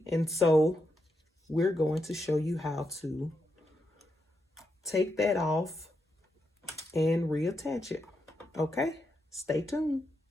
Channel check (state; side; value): normal; both; correlation 0.83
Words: and so we're going to show you how to take that off and reattach it. Okay, stay tuned.